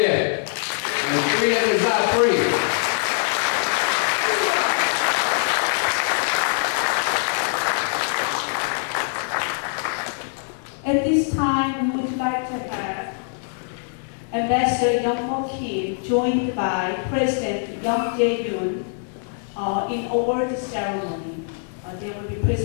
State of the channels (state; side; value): silent; right; 63 dB below the other